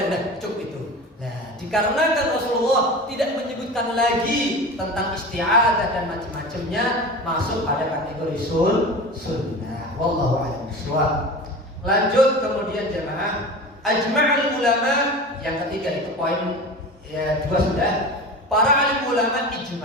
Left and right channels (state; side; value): normal; both; correlation 0.32